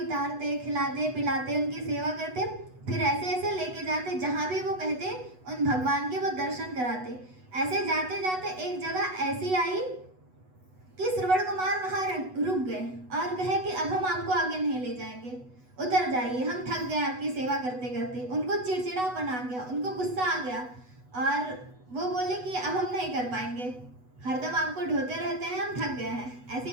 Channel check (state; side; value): late; left; 8.1 ms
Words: उतारते, खिलाते पिलाते, उनकी सेवा करते, फिर ऐसे ऐसे लेके जाते जहाँ भी वो कहते उन भगवान के वो दर्शन कराते। ऐसे जाते जाते एक जगह ऐसी आई कि श्रवण कुमार वहाँ रुक गए और कहे कि अब हम आपको आगे नहीं ले जाएंगे, उतर जाइए, हम थक गए आपकी सेवा करते करते। उनको चिड़चिड़ापन आ गया, उनको गुस्सा आ गया और वो बोले कि अब हम नहीं कर पाएंगे, हरदम आपको ढोते रहते हैं, हम थक गए हैं।